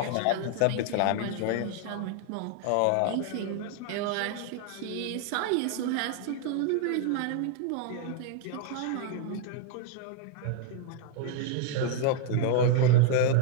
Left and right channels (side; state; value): both; different; correlation 0.00